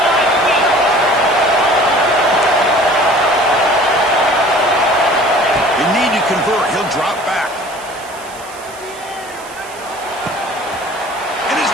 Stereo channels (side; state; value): right; noise; hiss, 19 dB below the sound